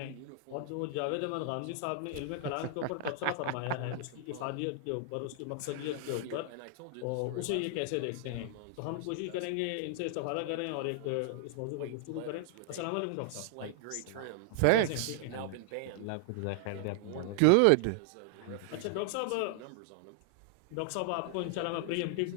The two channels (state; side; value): different; both; correlation 0.00